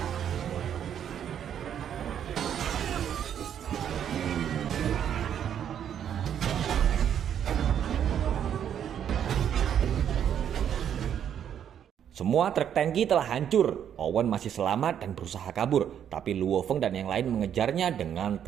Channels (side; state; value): left; quieter; 9.2 dB